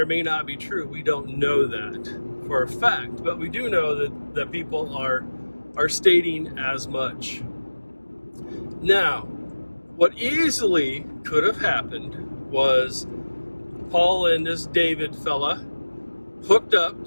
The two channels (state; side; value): inverted; both; correlation -1.00